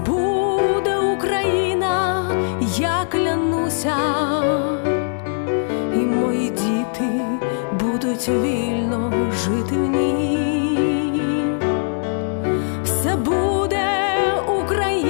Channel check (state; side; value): silent; right; digital silence